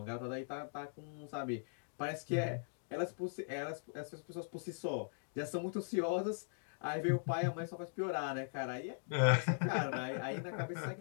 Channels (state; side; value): silent; right; digital silence